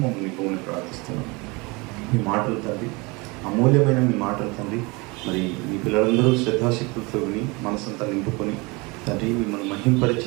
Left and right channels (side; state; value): left; quieter; 26.4 dB